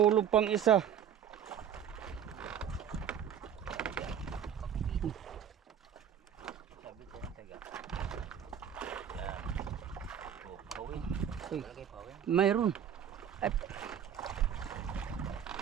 pang isa. Mayroon. Ay,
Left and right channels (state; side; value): quieter; left; 8.8 dB